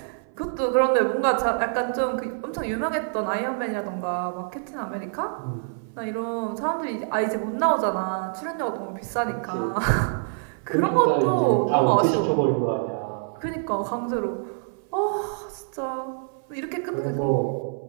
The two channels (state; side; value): silent; left; 57 dB below the other